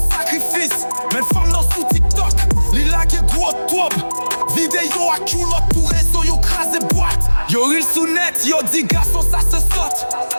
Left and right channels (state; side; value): inverted; both; correlation -1.00